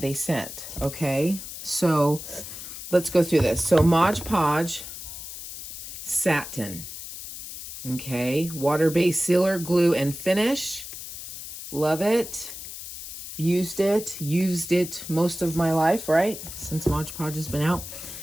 they sent. Okay, so let's go through this. So Modge Podge satin, okay, water-based sealer, glue, and finish. Love it. Used it most of my life, right, since Modge Podge has been out.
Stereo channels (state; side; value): noise; left; hiss, 10 dB below the sound